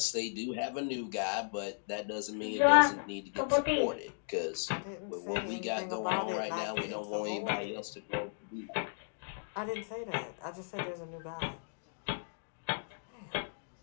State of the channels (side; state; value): right; silent; digital silence